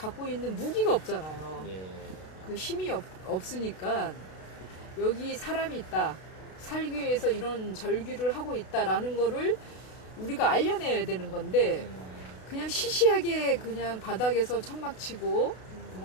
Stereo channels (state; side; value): late; right; 32 ms